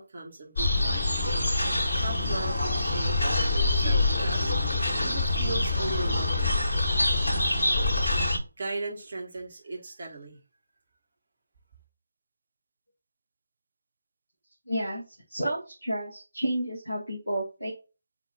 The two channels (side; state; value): both; inverted; correlation -0.81